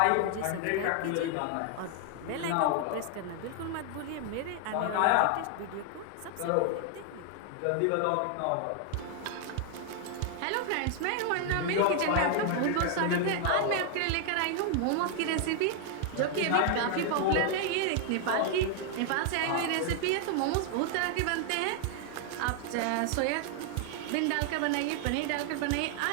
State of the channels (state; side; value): different; both; correlation 0.00